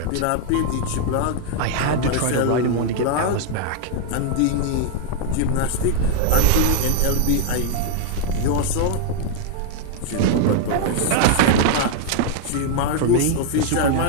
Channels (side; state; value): both; different; correlation 0.01